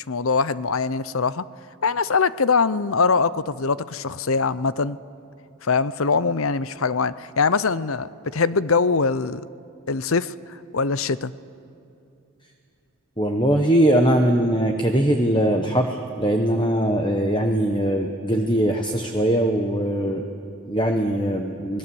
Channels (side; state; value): both; normal; correlation 0.21